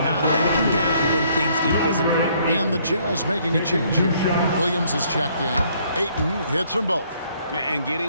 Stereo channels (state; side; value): inverted; both; correlation -0.65